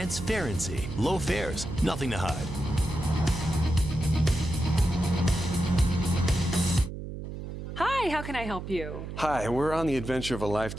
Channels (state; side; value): noise; right; hum, 8 dB below the sound